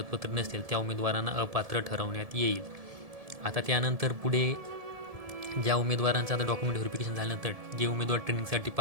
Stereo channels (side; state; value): left; late; 1.7 ms